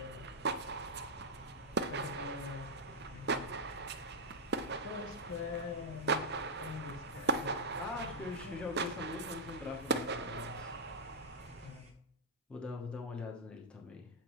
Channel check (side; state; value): both; normal; correlation -0.05